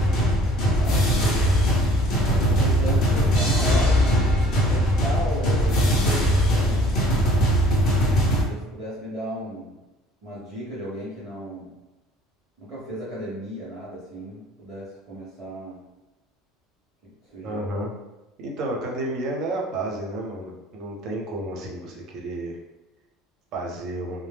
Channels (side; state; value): both; normal; correlation 0.55